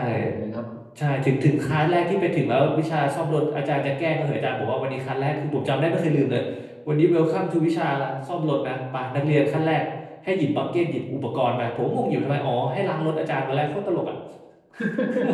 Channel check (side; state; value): both; identical; correlation 1.00